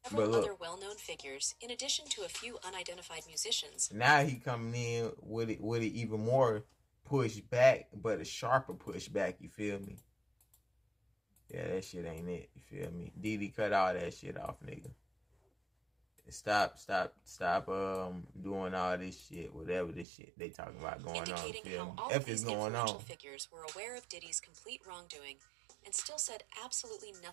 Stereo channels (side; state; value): left; drops out; at 20.1 s